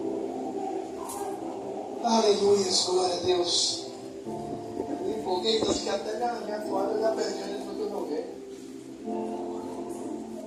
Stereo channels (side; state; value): both; identical; correlation 1.00